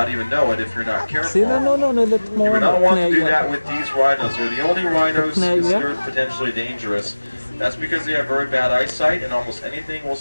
even know it if you're not careful. See, no, you would not want to do that with these rhinos. They're the only rhinos considered potentially dangerous. That's because they have very bad eyesight and almost anything will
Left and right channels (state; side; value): inverted; both; correlation -1.00